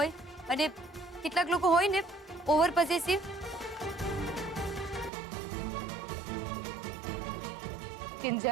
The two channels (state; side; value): drops out; left; at 5.1 s